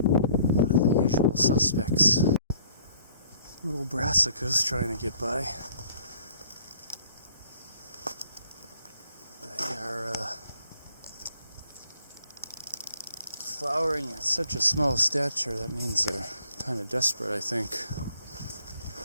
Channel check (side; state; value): both; inverted; correlation -0.60